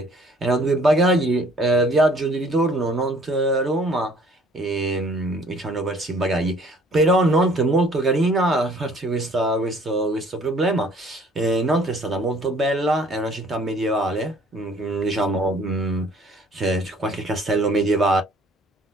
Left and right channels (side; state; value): both; normal; correlation 0.56